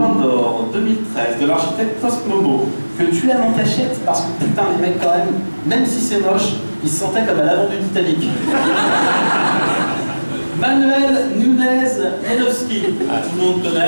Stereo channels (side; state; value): both; inverted; correlation -1.00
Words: d'or 2013 de l'architecte Cosmobo, que tu aimes en cachette parce que putain les mecs quand même si c'est moche, ils se sentaient comme à l'avant du Titanic. Manuel Nunez-Janowski, tout le monde